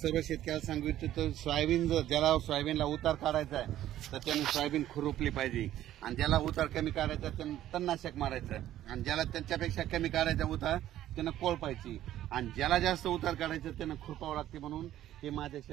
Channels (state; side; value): quieter; left; 12.9 dB